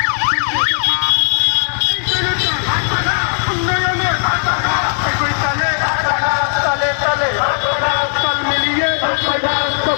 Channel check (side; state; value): right; silent; digital silence